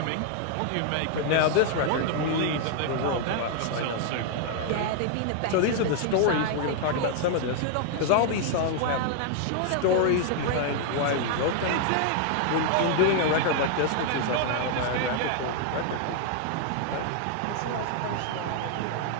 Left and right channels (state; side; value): different; both; correlation 0.00